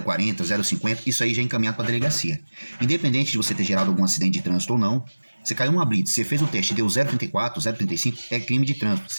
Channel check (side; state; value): both; inverted; correlation -1.00